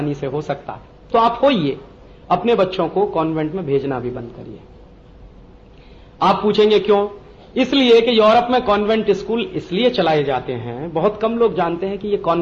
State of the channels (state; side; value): identical; both; correlation 1.00